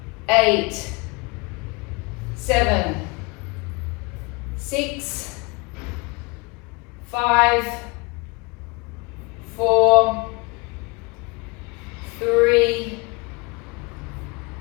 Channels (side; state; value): right; quieter; 27.8 dB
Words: 8, 7, 6, 5, 4, 3,